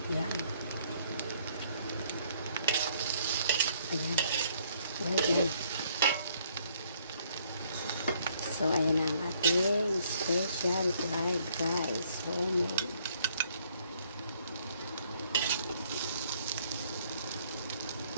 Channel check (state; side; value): inverted; both; correlation -0.66